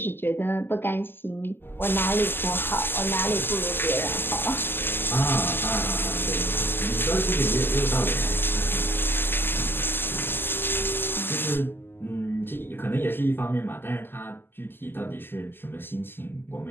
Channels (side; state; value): right; late; 0.10 ms